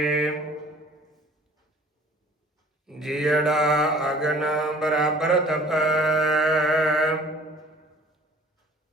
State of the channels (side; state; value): both; normal; correlation 0.50